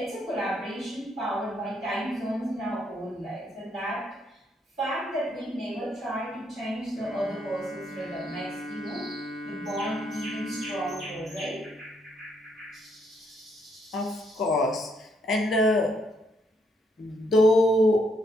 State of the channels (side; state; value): both; normal; correlation 0.74